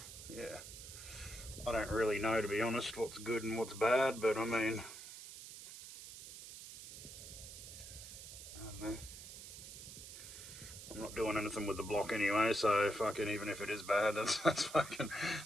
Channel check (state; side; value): noise; right; hiss, 12 dB below the sound